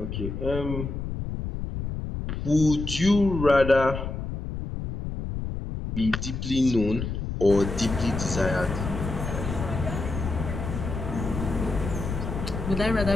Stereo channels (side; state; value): left; noise; rumble, 5 dB below the sound